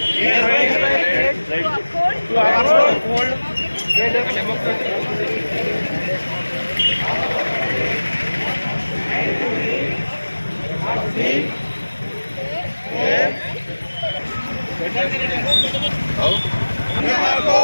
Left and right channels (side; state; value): both; inverted; correlation -1.00